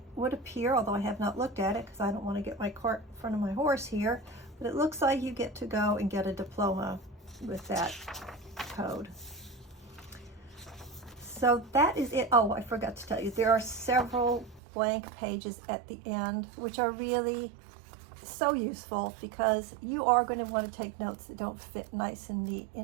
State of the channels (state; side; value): drops out; left; at 14.6 s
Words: would appear, although I have not looked at it because I don't want to get my cart in front of my horse here, but it looks like you get to go and get a diploma with that code. So that is it. Oh, I forgot to tell you, there are several blank pages at the end, which are really so useful because you are going to want to take notes that don't fit nice and neat